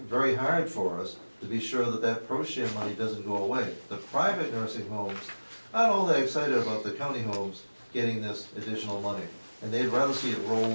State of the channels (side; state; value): both; inverted; correlation -1.00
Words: hard for us to be sure that that pro share money doesn't go away. The private nursing homes, not all that excited about the county homes getting this additional money, and they'd rather see it